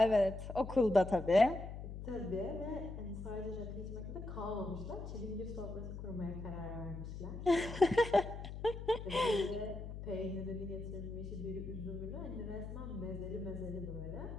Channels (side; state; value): left; noise; hum, 8 dB below the sound